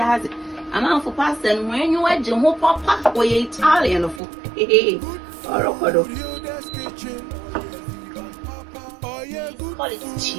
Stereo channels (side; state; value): left; drops out; at 4.2 s